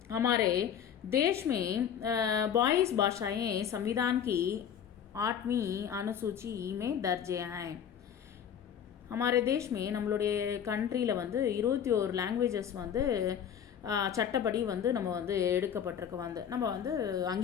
हमारे देश में 22 भाषाएं संविधान की 8वीं अनुसूची में दर्ज हैं. हमारे देश में நம்மளுடைய கண்ட்ரியில் வந்து 21 லாங்குவேஜஸ் வந்து சட்டப்படி வந்து நம்ம வந்து எடுக்கப்பட்டிருக்கு. வந்து நம்ம வந்து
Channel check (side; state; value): right; quieter; 8.7 dB